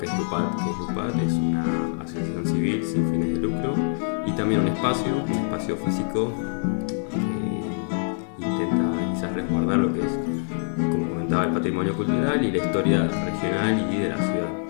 es LUPAT, es una asociación civil sin fines de lucro y también un espacio físico que intenta quizás resguardar lo que es, como comentaba, el patrimonio cultural y la historia regional y de la ciudad.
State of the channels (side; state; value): right; silent; digital silence